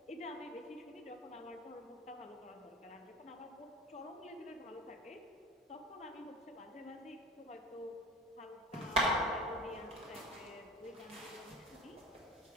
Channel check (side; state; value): both; normal; correlation 0.36